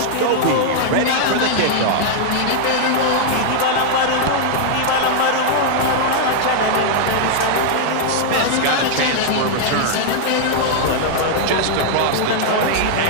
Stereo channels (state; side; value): different; both; correlation -0.01